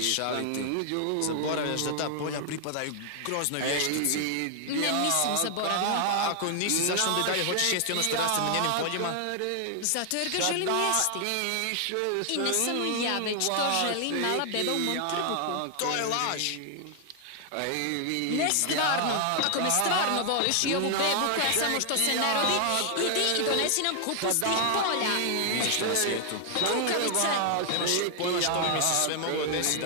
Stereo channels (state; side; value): different; both; correlation 0.00